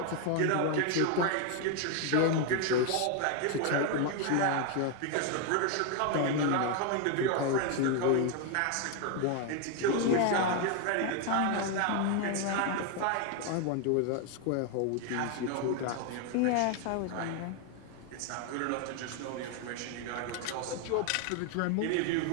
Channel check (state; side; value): different; both; correlation 0.01